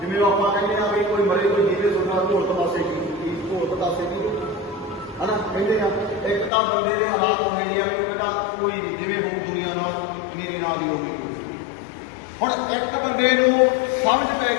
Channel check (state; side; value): drops out; right; at 6.5 s